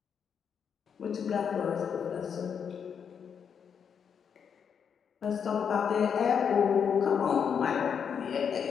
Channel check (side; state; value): right; quieter; 7.2 dB